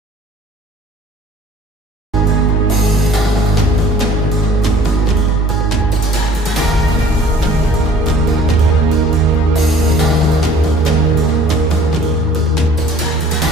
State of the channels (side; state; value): both; normal; correlation 0.52